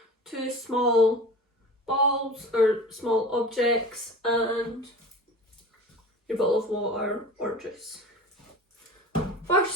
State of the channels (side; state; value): both; normal; correlation 0.36